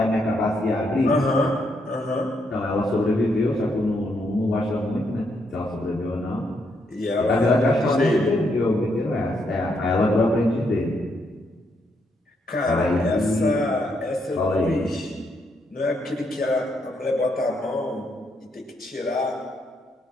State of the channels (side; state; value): both; normal; correlation 0.76